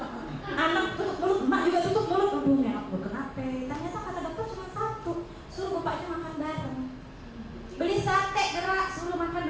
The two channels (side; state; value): both; identical; correlation 1.00